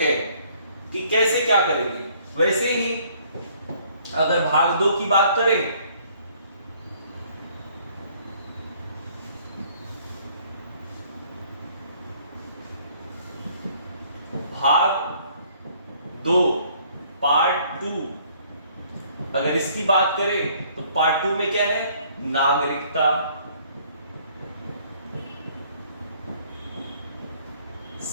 कि कैसे क्या करेंगे। वैसे ही अगर भाग 2 की बात करें, भाग 2 पार्ट 2, अगर इसकी बात करें तो पार्ट 2 में क्या है, नागरिकता,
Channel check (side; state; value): both; inverted; correlation -0.61